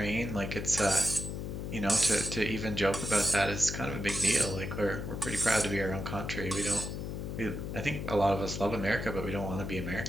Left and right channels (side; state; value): left; noise; hum, 5 dB below the sound